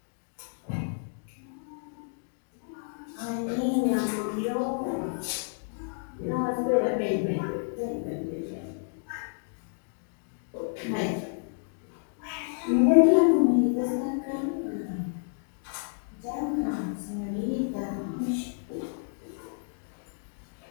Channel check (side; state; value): right; silent; digital silence